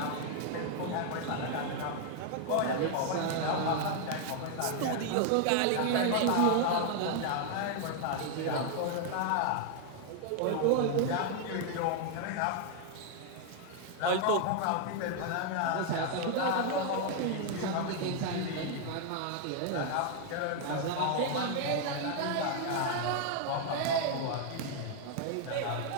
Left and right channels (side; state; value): both; different; correlation 0.00